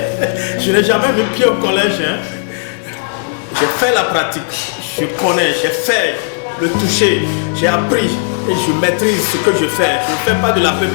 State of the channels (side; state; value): right; silent; digital silence